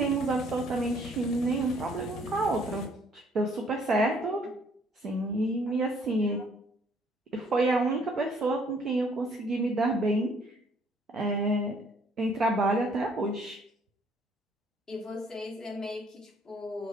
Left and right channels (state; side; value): normal; both; correlation 0.62